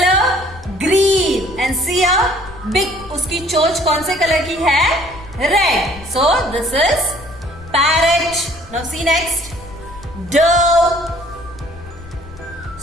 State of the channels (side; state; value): left; noise; rumble, 18 dB below the sound